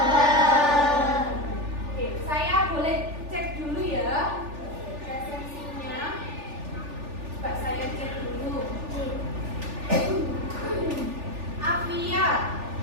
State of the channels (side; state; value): left; late; 3.4 ms